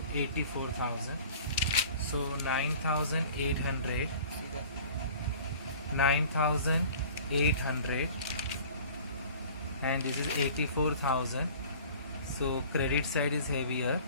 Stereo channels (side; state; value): both; inverted; correlation -0.45